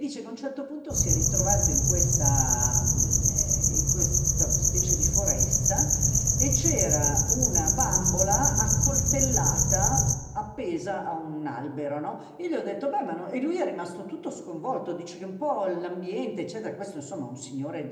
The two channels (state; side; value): identical; both; correlation 1.00